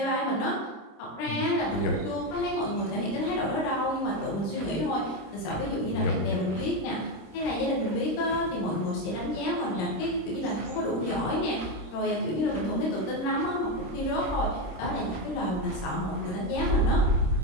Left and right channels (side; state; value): right; late; 26 ms